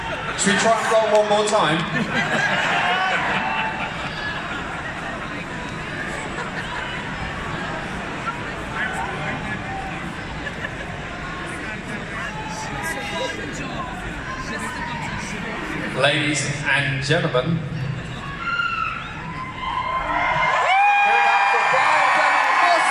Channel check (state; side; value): identical; both; correlation 1.00